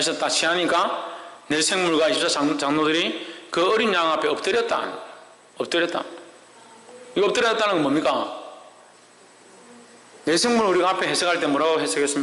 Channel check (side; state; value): both; identical; correlation 1.00